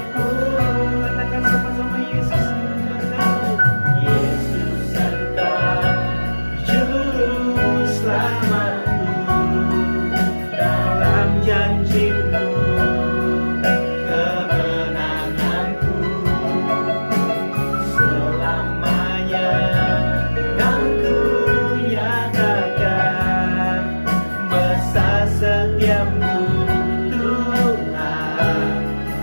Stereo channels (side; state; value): both; inverted; correlation -1.00